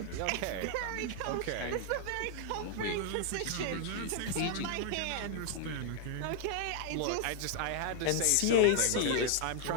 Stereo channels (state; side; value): different; both; correlation 0.00